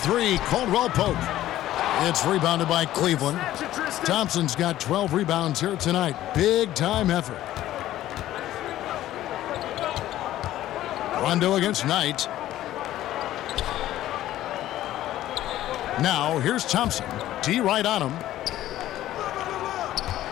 Caldwell Pope. It's rebounded by Cleveland. Thompson's got 12 rebounds here tonight. Big time effort. Rondo against Knight. Now here's Thompson. D right on him.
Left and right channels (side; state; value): right; quieter; 13.8 dB